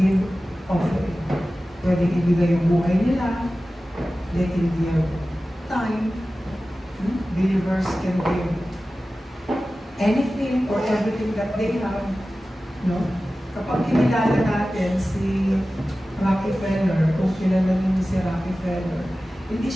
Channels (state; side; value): normal; both; correlation 0.95